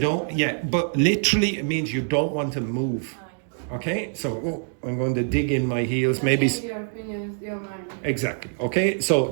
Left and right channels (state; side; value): silent; left; digital silence